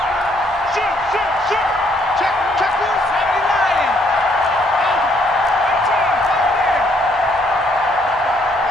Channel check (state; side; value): normal; both; correlation 0.68